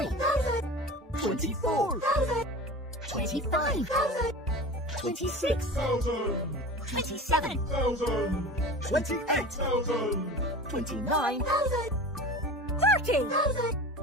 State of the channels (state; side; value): normal; both; correlation 0.34